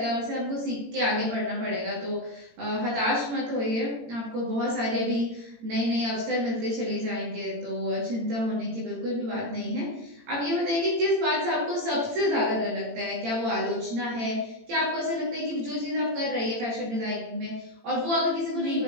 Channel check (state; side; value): late; left; 18 ms